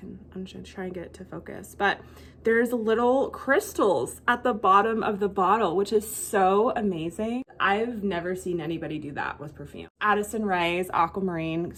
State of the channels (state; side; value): identical; both; correlation 1.00